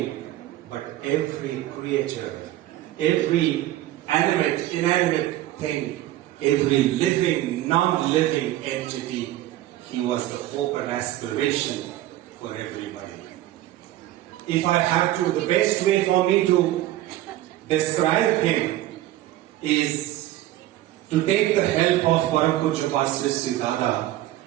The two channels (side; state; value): left; quieter; 14.7 dB